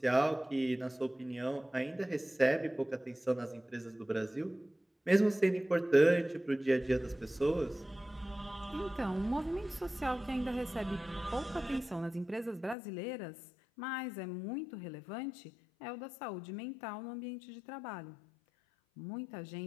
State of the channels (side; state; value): right; drops out; at 12.8 s